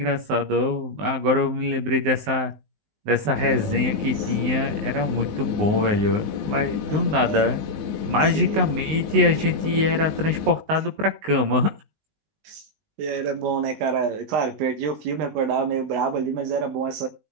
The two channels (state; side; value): late; left; 19 ms